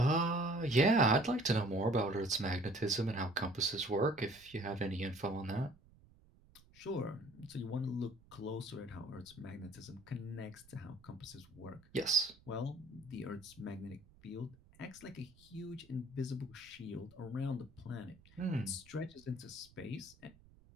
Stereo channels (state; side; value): noise; right; rumble, 26 dB below the sound